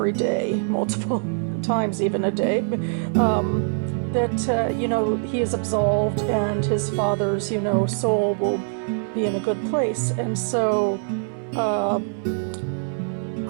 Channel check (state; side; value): silent; left; 63 dB below the other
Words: day, multiple times even a day, that, he is absolved and his father's, soul will be in a good place. And so,